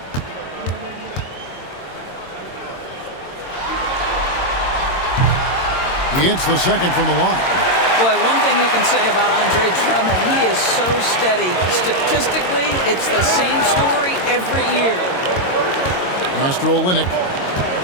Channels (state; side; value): late; right; 22 ms